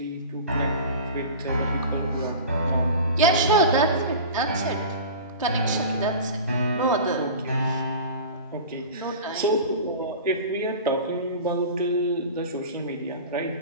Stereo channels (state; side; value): inverted; both; correlation -0.34